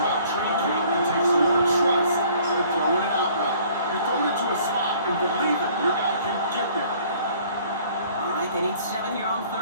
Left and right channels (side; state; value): both; inverted; correlation -0.55